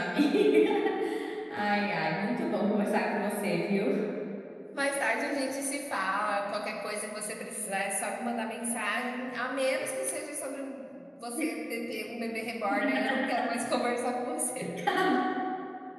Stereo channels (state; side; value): identical; both; correlation 1.00